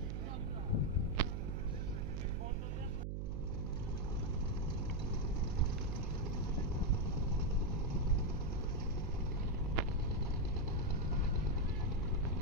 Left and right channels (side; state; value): right; noise; hum, 1 dB below the sound